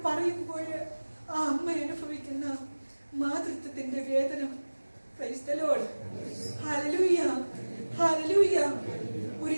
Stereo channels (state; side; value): inverted; both; correlation -1.00